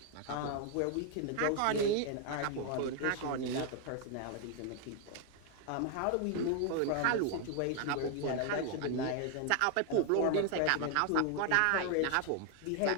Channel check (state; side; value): different; both; correlation 0.00